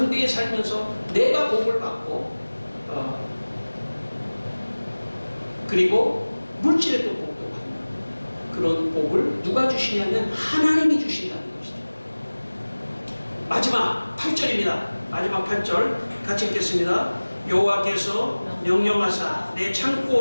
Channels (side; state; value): both; inverted; correlation -1.00